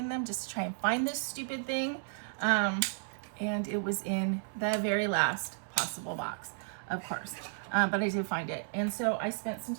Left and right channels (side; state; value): left; silent; digital silence